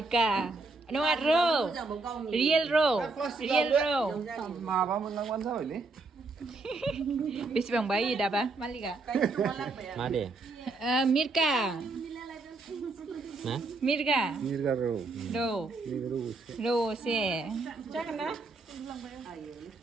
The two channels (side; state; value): left; quieter; 3.6 dB